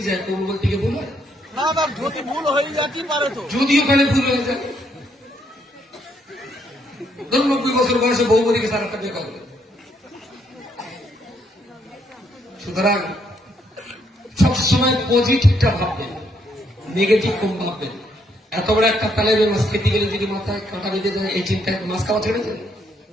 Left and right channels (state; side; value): normal; both; correlation 0.73